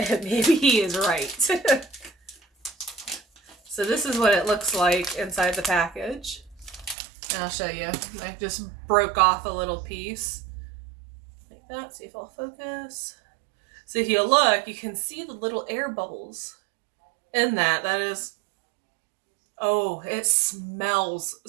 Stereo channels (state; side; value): drops out; left; at 7.0 s